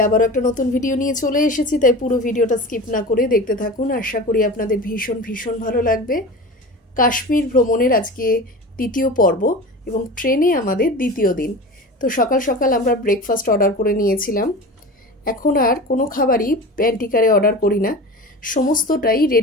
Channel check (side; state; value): both; normal; correlation 0.32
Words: আবার একটা নতুন ভিডিও নিয়ে চলে এসেছি, তাই পুরো ভিডিওটা স্কিপ না করে দেখতে থাকুন। আশা করি আপনাদের ভীষণ ভীষণ ভালো লাগবে। কাশ্মীর ভ্রমণের আজকে দ্বিতীয় পর্ব এবং ট্রেনে আমাদের দ্বিতীয় দিন। তো সকাল সকাল আমরা ব্রেকফাস্ট অর্ডার করে নিয়েছিলাম। এখন আর কোনো খাবারই প্যান্টিকারে অর্ডার করি না, সমস্তটাই